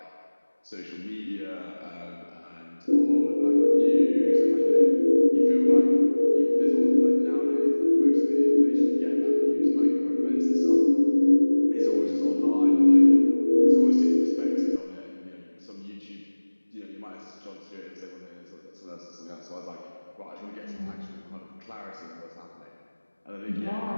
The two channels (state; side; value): inverted; both; correlation -1.00